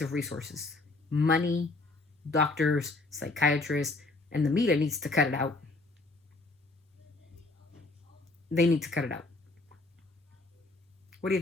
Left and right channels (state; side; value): quieter; right; 3.2 dB